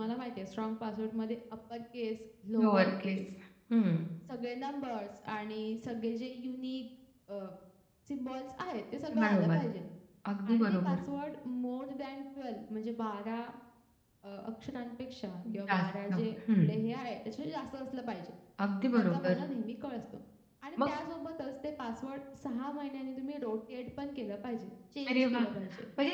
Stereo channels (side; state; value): both; identical; correlation 1.00